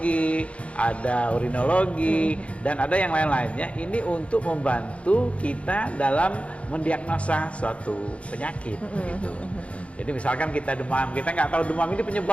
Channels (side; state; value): right; late; 0.062 ms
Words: ada urinologi, dan ada yang lain-lainnya. Ini untuk membantu kita dalam mendiagnosa suatu penyakit gitu. Jadi misalkan kita demam, kita nggak tahu demam ini